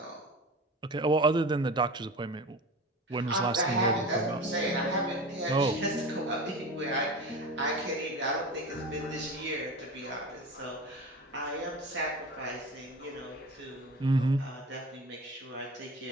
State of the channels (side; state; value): both; normal; correlation 0.31